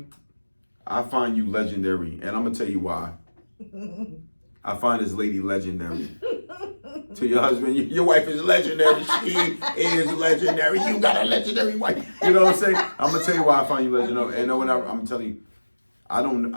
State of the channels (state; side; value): inverted; both; correlation -1.00